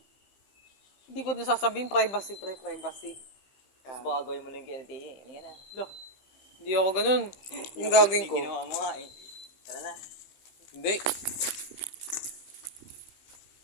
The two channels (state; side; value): late; right; 15 ms